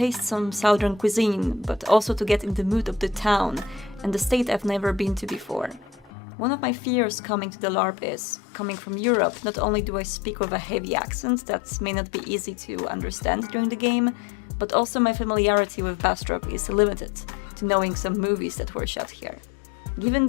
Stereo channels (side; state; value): right; drops out; at 6.1 s